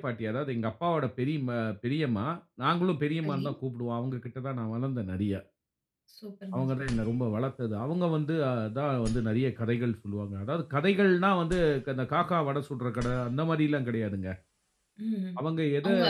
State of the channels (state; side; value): identical; both; correlation 1.00